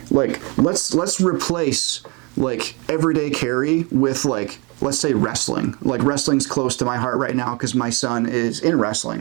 Like let's replace like everyday carry with like, let's say wrestling. Like wrestling's close to my heart right now because my son is in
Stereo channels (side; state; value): left; quieter; 29.8 dB